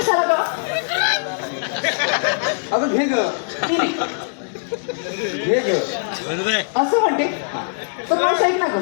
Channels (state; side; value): silent; right; digital silence